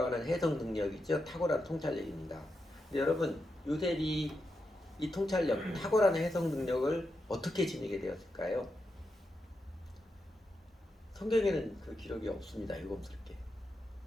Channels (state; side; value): normal; both; correlation 0.86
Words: 해석 능력이죠. 탁월한 통찰력입니다. 근데 여러분, 요셉이 이 통찰력, 탁월한 해석 능력을 어떻게 지니게 되었을까요? 성경에는 그 기록이 없습니다. 유검스럽게.